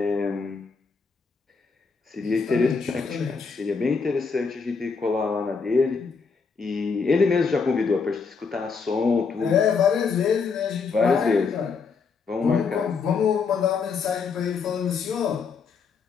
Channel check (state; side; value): quieter; right; 5.2 dB